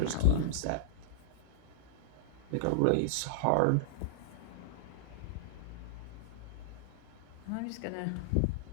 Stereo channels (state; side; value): different; both; correlation -0.02